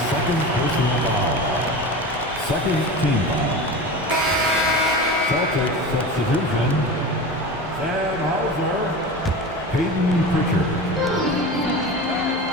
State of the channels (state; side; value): normal; both; correlation 0.29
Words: second personal foul. Second team foul. Celtics substitution. Sam Hauser. Peyton Pritchard.